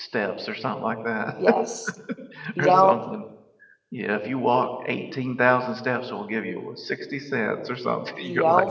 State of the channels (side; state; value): both; identical; correlation 1.00